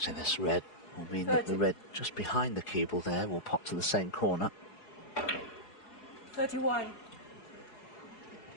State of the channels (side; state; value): right; late; 4.8 ms